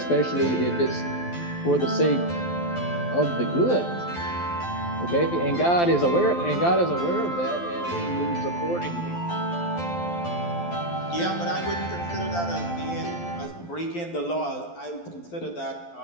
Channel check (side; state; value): right; late; 12 ms